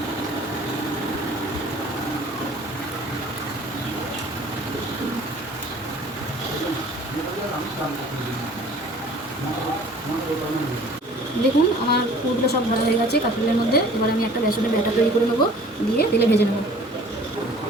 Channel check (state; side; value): normal; both; correlation 0.49